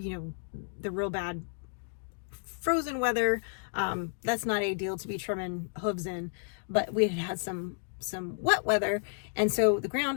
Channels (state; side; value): silent; right; digital silence